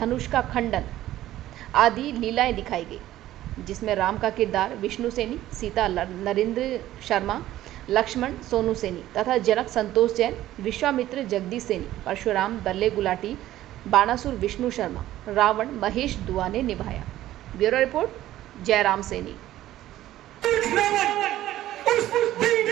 का खंडन आदि लीलाएं दिखाई गई, जिसमें राम का किरदार विष्णु सेनी, सीता नरेंद्र शर्मा, लक्ष्मण सोनू सेनी तथा जनक संतोष जैन, विश्वामित्र जगदीश सेनी, परशुराम बल्ले गुलाटी, बाणासुर विष्णु शर्मा, रावण महेश दुआ ने निभाया। Bureau report, Jairam Saini. उस दिन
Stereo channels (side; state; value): left; quieter; 14.1 dB